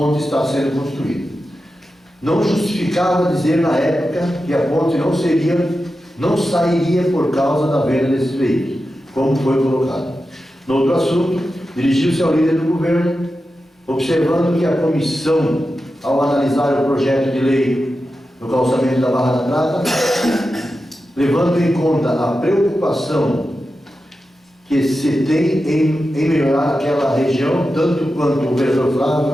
está sendo construída. Não justificava dizer na época que a ponte não sairia por causa da venda desses veículos, como foi colocado. No outro assunto, dirigiu-se ao líder do governo, observando que a comissão, ao analisar o projeto de lei do calçamento da Barra da Prata, levando em conta a preocupação que se tem em melhorar aquela região, tanto quanto o vereador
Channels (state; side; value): normal; both; correlation 0.91